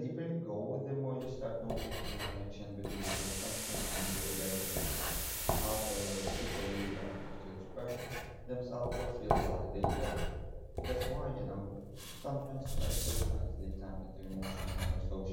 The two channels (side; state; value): both; identical; correlation 1.00